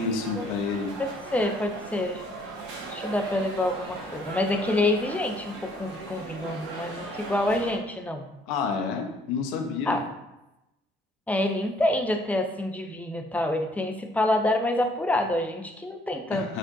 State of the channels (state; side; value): normal; both; correlation 0.63